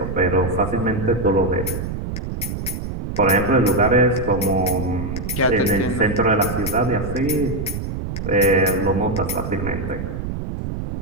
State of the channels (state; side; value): noise; right; rumble, 5 dB below the sound